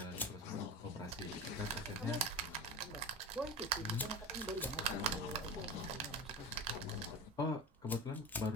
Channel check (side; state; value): both; normal; correlation 0.27